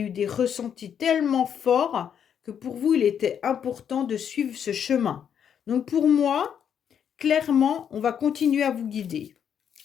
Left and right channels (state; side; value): quieter; right; 8.3 dB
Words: des ressentis tellement forts que pour vous, il était important de suivre ce chemin. Donc pour moi, clairement, on va continuer à vous guider.